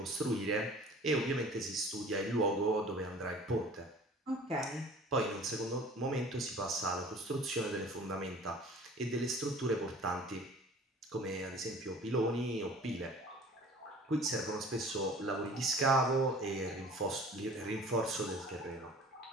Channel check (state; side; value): normal; both; correlation 0.46